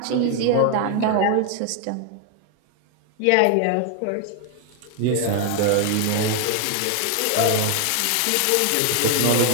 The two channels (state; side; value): different; both; correlation 0.01